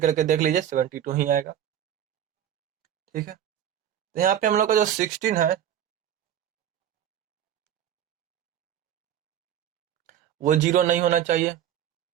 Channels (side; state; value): left; quieter; 10.4 dB